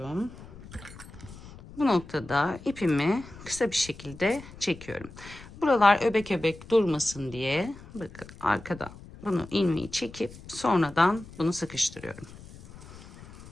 Bu noktada ipimi kısa bir şekilde çekiyorum. Buralar öbek öbek durmasın diye bakın arkadan bunu ilmeği çekip sonradan bunu sıkıştırıyorum.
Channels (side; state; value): left; noise; rumble, 18 dB below the sound